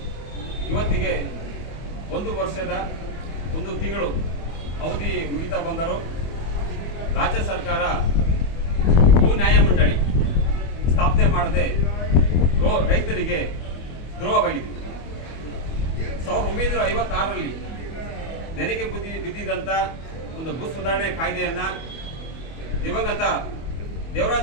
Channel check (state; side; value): late; right; 25 ms